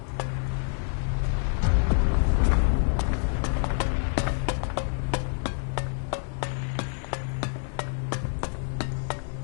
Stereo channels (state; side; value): silent; right; 60 dB below the other